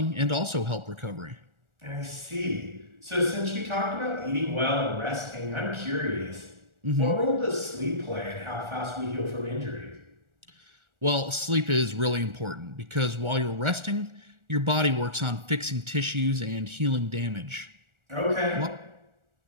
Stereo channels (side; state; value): left; late; 1.4 ms